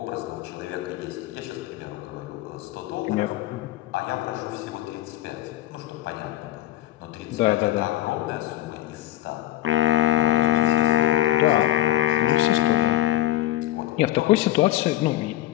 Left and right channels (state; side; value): quieter; right; 14.5 dB